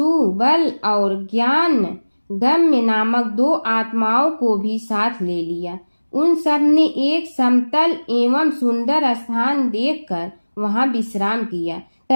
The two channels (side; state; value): both; inverted; correlation -1.00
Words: और ज्ञान गम्य नामक 2 आत्माओं को भी साथ ले लिया। उन सब ने एक समतल एवं सुंदर स्थान देखकर वहां विश्राम किया।